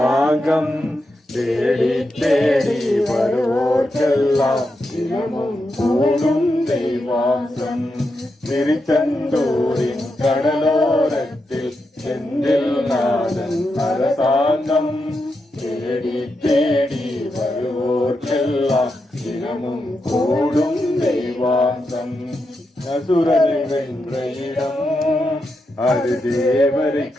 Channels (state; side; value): normal; both; correlation 0.86